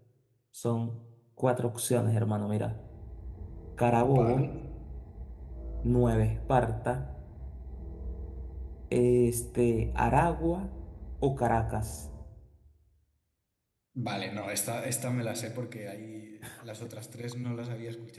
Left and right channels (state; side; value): identical; both; correlation 1.00